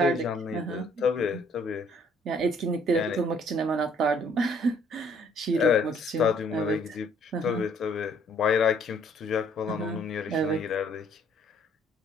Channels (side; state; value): both; normal; correlation 0.62